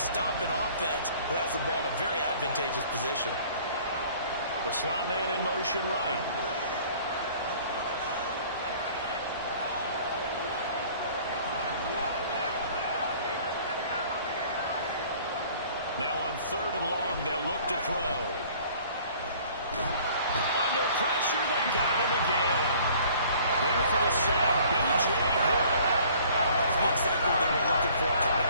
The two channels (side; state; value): both; inverted; correlation -0.52